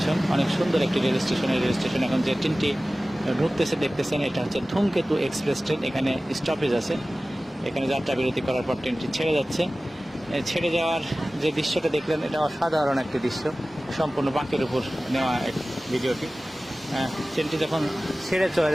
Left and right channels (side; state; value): both; normal; correlation 0.97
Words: অনেক সুন্দর একটি রেল স্টেশন। এই রেল স্টেশন এখন যে ট্রেনটি ঢুকতেছে দেখতেছেন, এটা হচ্ছে ধূমকেতু এক্সপ্রেস ট্রেন। এখানে স্টপেজ আছে, এখানে যাত্রা বিরতি করার পর ট্রেনটি ছেড়ে যাচ্ছে। ছেড়ে যাওয়ার যে দৃশ্যটা দেখলেন, এটা অসাধারণ একটি দৃশ্য, সম্পূর্ণ বাঁকের উপর নেওয়া এক ভিডিওটি। ট্রেনটি যখন ছেড়ে চলে